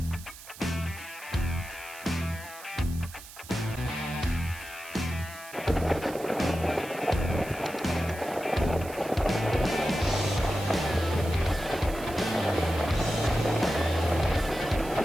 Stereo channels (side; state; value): right; noise; hiss, 16 dB below the sound